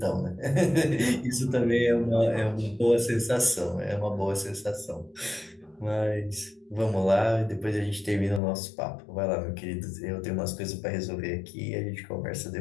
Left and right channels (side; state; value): right; drops out; at 8.4 s